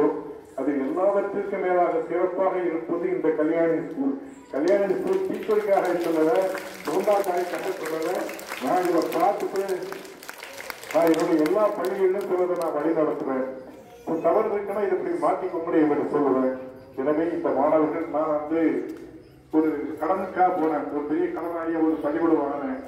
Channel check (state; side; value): identical; both; correlation 1.00